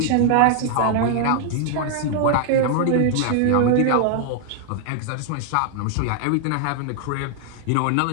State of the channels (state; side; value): different; both; correlation 0.00